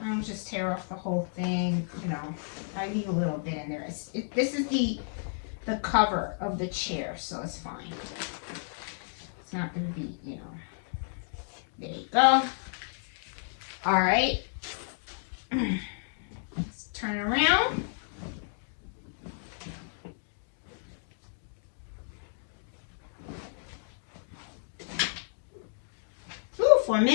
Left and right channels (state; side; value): silent; right; digital silence